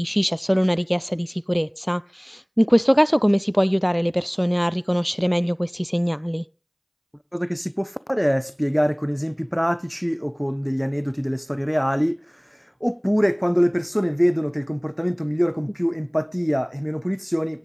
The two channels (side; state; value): both; identical; correlation 1.00